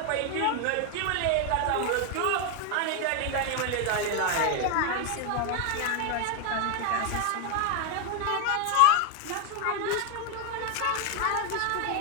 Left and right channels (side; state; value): both; different; correlation 0.01